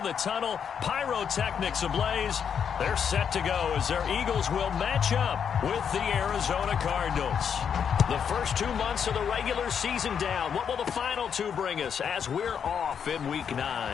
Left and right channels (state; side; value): quieter; right; 7.5 dB